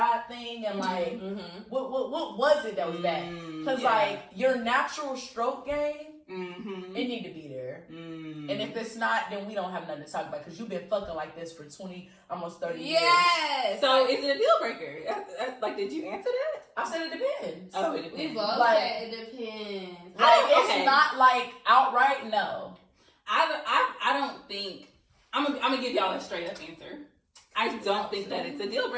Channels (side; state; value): both; identical; correlation 1.00